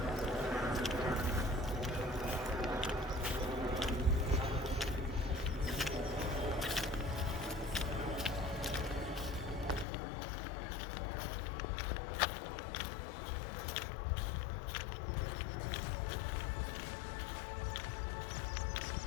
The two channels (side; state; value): right; drops out; at 9.9 s